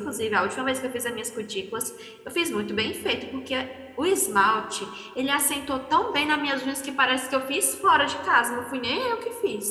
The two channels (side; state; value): both; identical; correlation 1.00